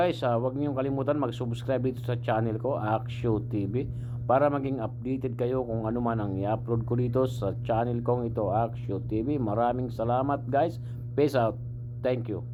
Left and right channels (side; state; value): both; identical; correlation 1.00